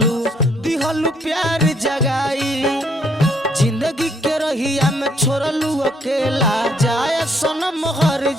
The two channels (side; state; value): both; normal; correlation 0.68